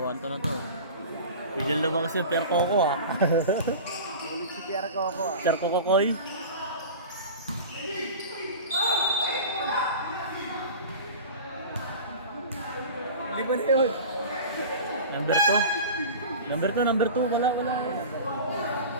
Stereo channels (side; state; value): both; inverted; correlation -0.35